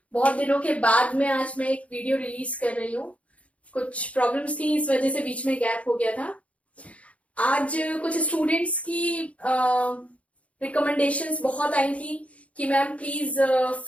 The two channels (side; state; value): right; late; 0.065 ms